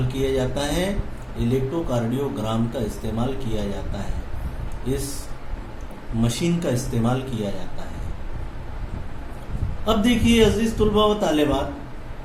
किया जाता है? इलेक्ट्रोकार्डियोग्राम का इस्तेमाल किया जाता है। इस मशीन का इस्तेमाल किया जाता है। अब देखिए अजीज तुलबा व तालिबात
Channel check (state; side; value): identical; both; correlation 1.00